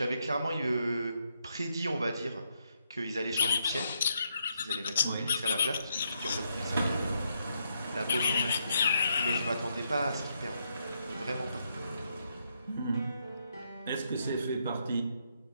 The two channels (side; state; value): both; inverted; correlation -0.78